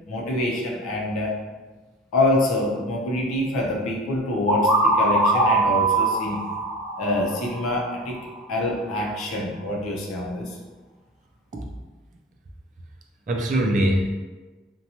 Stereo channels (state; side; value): normal; both; correlation 0.32